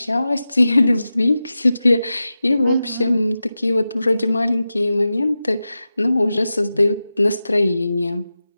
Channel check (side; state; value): both; inverted; correlation -0.93